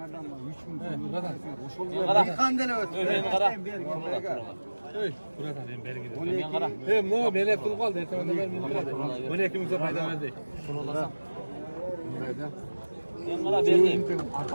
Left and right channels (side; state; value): both; inverted; correlation -1.00